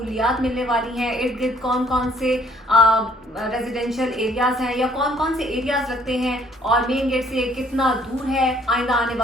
मिलने वाली हैं, इर्द गिर्द कौन कौन से रेजिडेंशियल एरियाज हैं या कौन कौन से एरियाज लगते हैं और मेन गेट से कितना दूर है, आइंदा आने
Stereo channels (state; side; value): normal; both; correlation 0.61